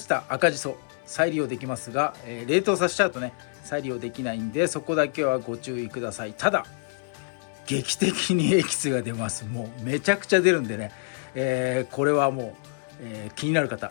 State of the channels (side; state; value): right; silent; 55 dB below the other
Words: た赤じそ再利用できますが、冷凍させちゃうとね再利用できないんで、そこだけはご注意ください。ただ劇的にエキスが出ます。もうめちゃくちゃ出るんでね、これはもう、気になる